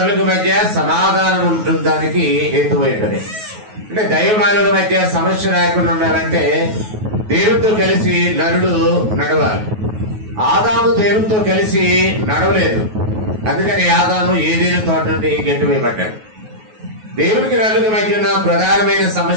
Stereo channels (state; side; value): late; left; 9.3 ms